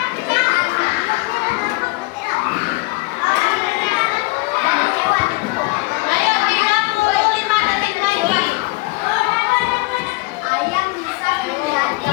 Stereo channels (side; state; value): right; quieter; 23.5 dB